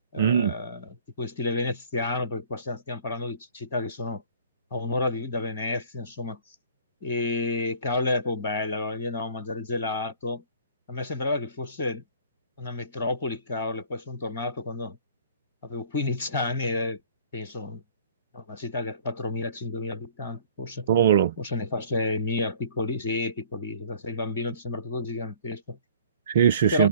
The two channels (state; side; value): inverted; both; correlation -0.51